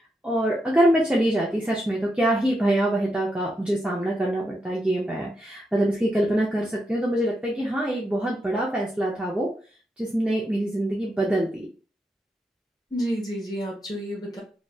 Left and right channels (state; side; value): normal; both; correlation 0.83